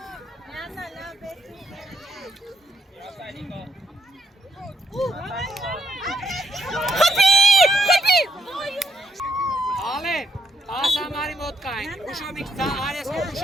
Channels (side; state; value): both; normal; correlation 0.76